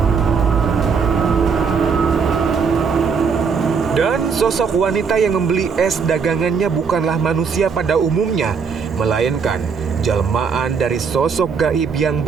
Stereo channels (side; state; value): left; quieter; 5.8 dB